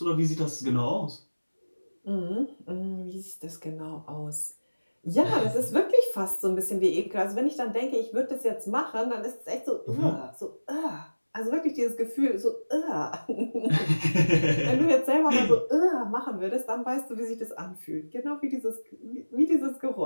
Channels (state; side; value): inverted; both; correlation -1.00